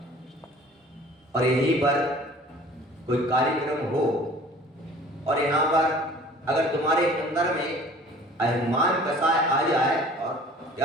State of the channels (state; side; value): normal; both; correlation 0.48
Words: और यहीं पर कोई कार्यक्रम हो और यहाँ पर अगर तुम्हारे अंदर में अभिमान कसाय आ जाए और